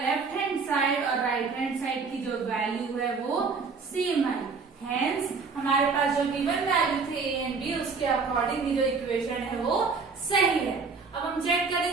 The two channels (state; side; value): quieter; left; 4.8 dB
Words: हैंड साइड और राइट हैंड साइड की जो वैल्यू है वो सेम है। हेंस हमारे पास जो गिवन वैल्यू थे A एंड B, उसके अकॉर्डिंग जो इक्वेशन है वो सही है। अब हम चेक